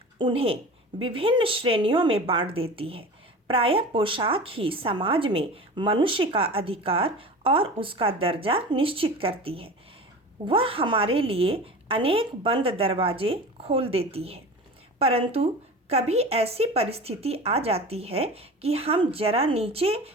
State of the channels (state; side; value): normal; both; correlation 0.34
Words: उन्हें विभिन्न श्रेणियों में बांट देती है। प्रायः पोशाक ही समाज में मनुष्य का अधिकार और उसका दर्जा निश्चित करती है। वह हमारे लिए अनेक बंद दरवाजे खोल देती है, परंतु कभी ऐसी परिस्थिति आ जाती है कि हम जरा नीचे